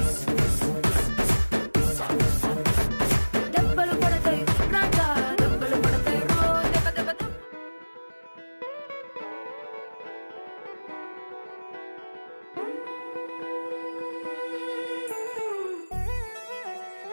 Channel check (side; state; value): both; inverted; correlation -1.00